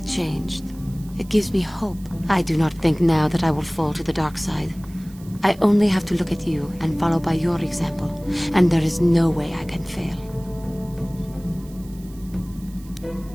changed. It gives me hope. I do not think now that I will fall to the dark side. I only have to look at you and follow by your example, and there is no way I can fail.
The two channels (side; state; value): right; noise; hiss, 24 dB below the sound